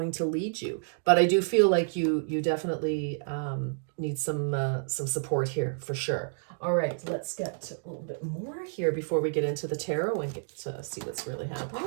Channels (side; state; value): left; silent; digital silence